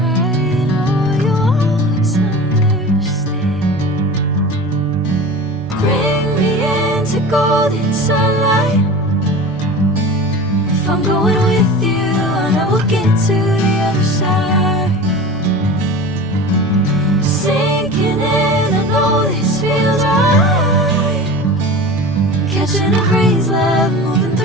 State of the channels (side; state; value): right; noise; hum, 27 dB below the sound